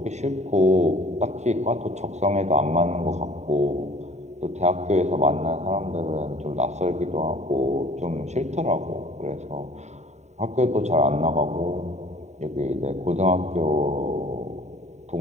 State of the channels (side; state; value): left; late; 0.33 ms